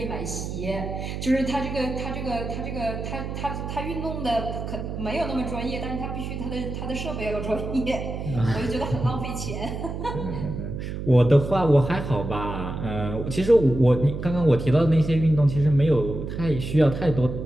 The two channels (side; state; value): right; noise; hum, 6 dB below the sound